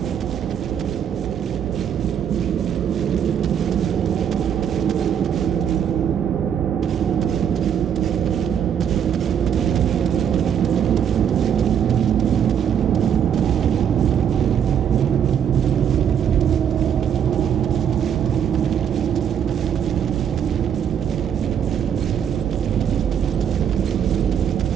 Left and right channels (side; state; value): left; quieter; 8.6 dB